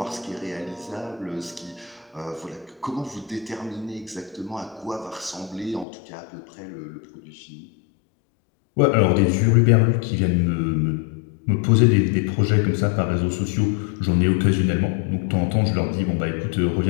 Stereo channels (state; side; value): drops out; right; at 5.9 s